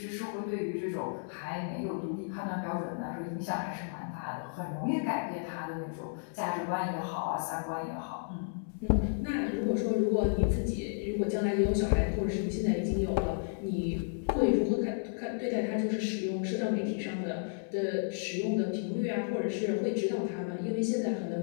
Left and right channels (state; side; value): silent; right; 56 dB below the other